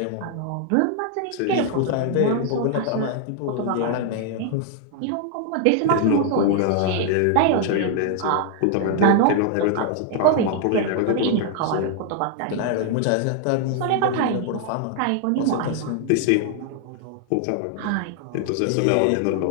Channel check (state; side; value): different; both; correlation 0.00